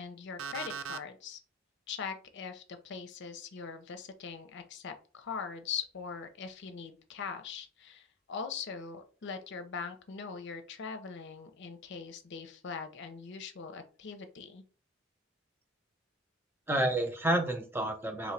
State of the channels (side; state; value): both; normal; correlation 0.40